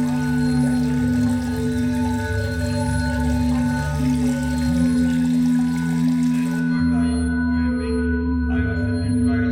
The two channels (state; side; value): identical; both; correlation 1.00